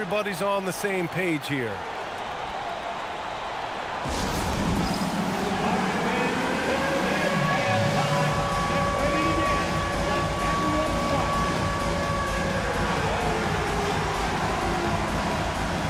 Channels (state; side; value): identical; both; correlation 1.00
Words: on the same page here.